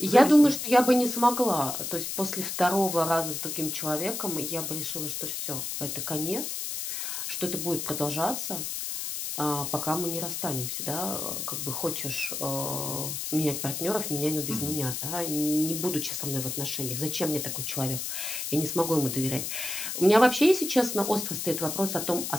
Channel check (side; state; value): left; noise; hiss, 4 dB below the sound